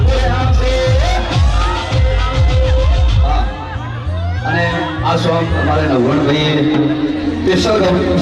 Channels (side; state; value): both; identical; correlation 1.00